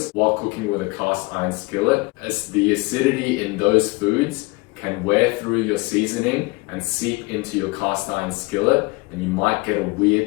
while cooking with a cast iron skillet, as the acidity in those foods can wear through your seasoning and seep into your cast iron skillet, and you might get a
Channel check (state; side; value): quieter; right; 25.1 dB